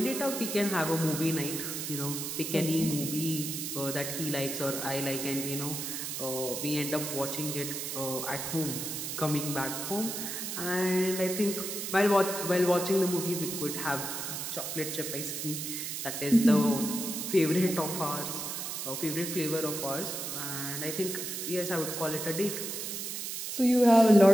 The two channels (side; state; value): right; noise; hiss, 5 dB below the sound